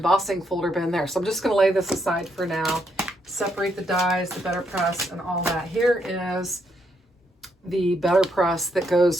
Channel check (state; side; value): normal; both; correlation 0.76